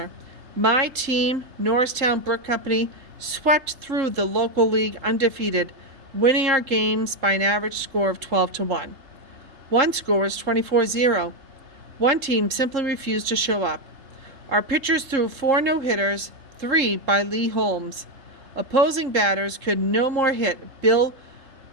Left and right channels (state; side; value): late; left; 3.7 ms